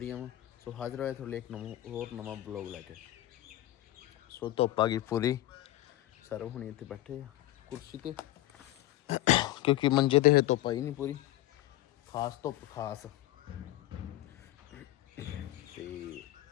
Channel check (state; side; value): quieter; right; 15.6 dB